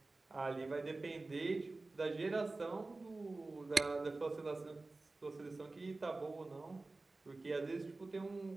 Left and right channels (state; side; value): quieter; left; 3.3 dB